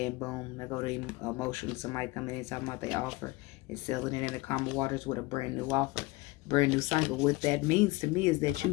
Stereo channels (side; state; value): right; quieter; 22.2 dB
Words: boom, they go to emotion. Somebody coming in talking about their offer and selling it in the calmer waters with a brand new offer, brand new cycle. What that means to me is that you